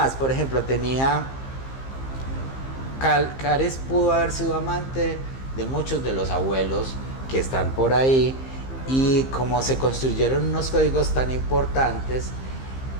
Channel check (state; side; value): late; right; 15 ms